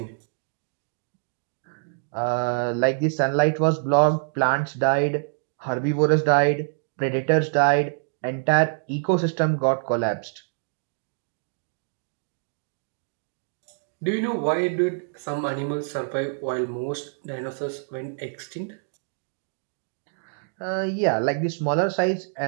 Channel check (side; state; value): left; silent; digital silence